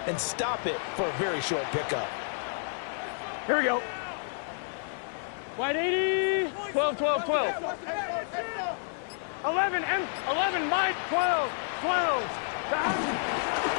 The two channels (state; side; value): silent; right; 58 dB below the other